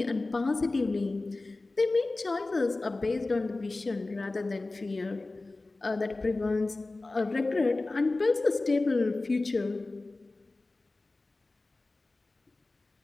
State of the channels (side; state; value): right; quieter; 3.2 dB